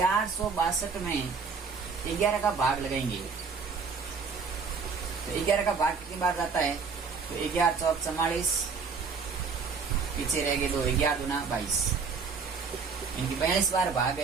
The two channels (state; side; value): quieter; left; 5.3 dB